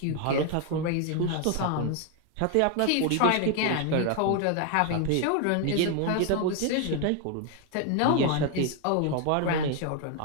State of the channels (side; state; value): both; different; correlation 0.01